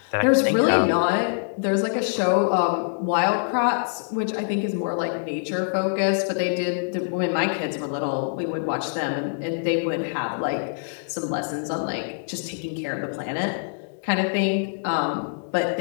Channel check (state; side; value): silent; right; 62 dB below the other